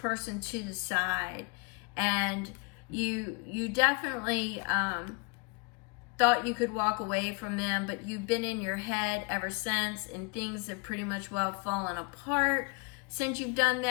to the side, and you definitely thought you could walk away from them, but you've been in your head ever since, and things have pretty much well fallen apart since you've done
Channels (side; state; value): right; quieter; 31.4 dB